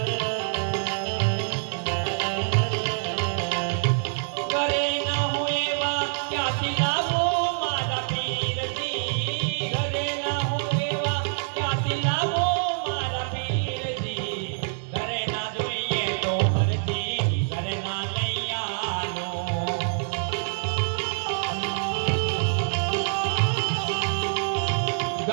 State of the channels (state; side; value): silent; left; digital silence